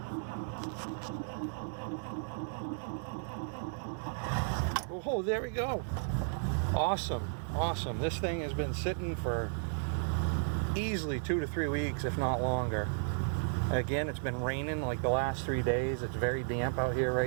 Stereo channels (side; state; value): left; silent; digital silence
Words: Oh, there we go. Awesome, awesome. This thing has been sitting for easily 2 to 3 weeks, if not longer. Again, it's been raining like the last 3 days. It's very damp out here